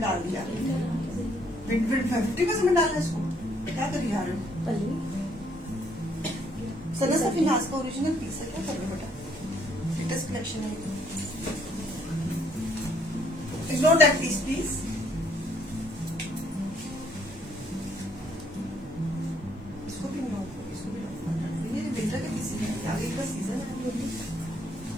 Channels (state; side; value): normal; both; correlation 0.66